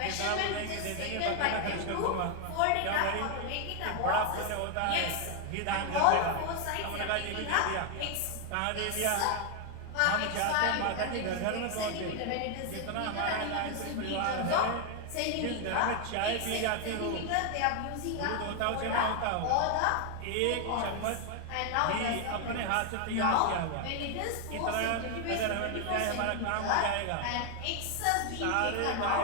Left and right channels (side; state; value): both; different; correlation 0.00